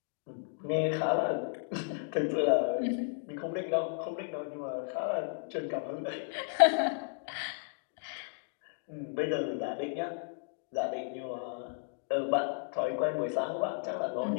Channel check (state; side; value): silent; right; digital silence